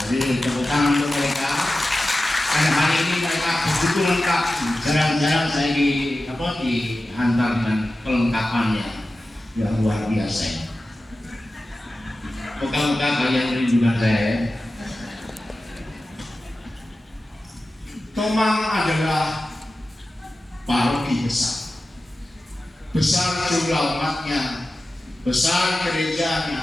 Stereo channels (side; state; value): both; normal; correlation 0.94